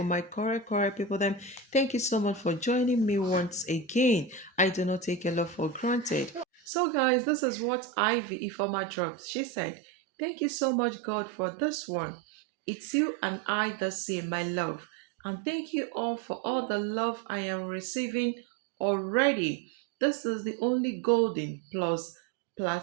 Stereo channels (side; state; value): left; drops out; at 6.6 s